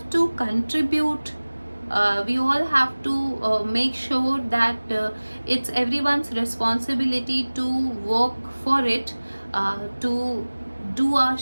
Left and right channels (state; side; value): inverted; both; correlation -1.00